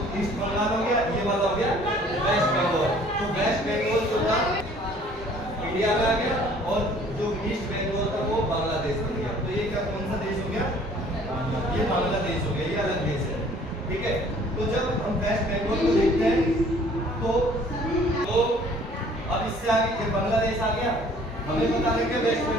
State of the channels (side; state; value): both; normal; correlation 0.55